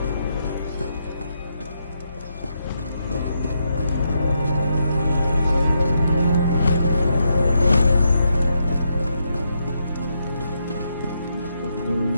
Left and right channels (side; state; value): both; inverted; correlation -0.81